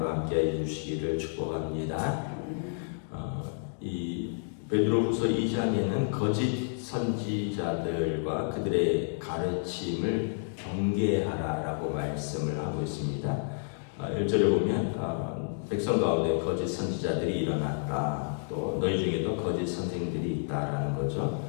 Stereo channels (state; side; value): silent; right; digital silence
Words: 함께 해주시기를 축복합니다. 이 베드로후서 2장에는 거짓 선지자들과 그들의 가르침을 경계하라라고 말씀을 하고 있습니다. 1절에 보면 백성 가운데 거짓 선지자들이 일어났다. 또 너희 중에도 거짓 선생들이 있다라는 거죠.